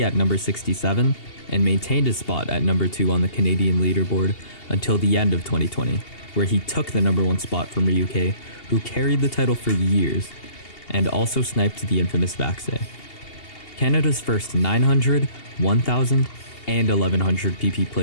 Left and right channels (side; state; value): right; late; 2.8 ms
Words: at number 67, and maintained his spot at number 2 on the Canadian leaderboard until the end of 2020, where he took the number 1 spot from RyuK, who carried the title for years, and also sniped the infamous Vaxe. Canada's first 900, 1000, and 1100 PP